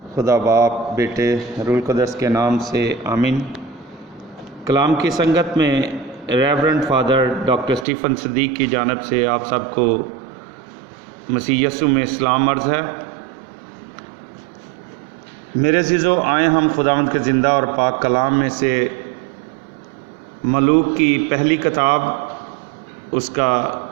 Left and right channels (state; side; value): drops out; left; at 7.9 s